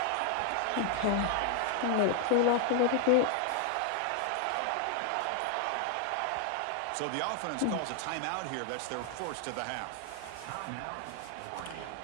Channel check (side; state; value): both; different; correlation 0.00